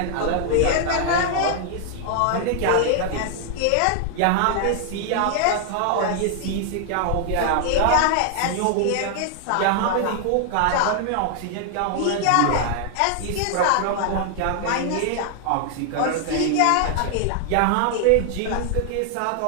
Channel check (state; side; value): different; both; correlation 0.00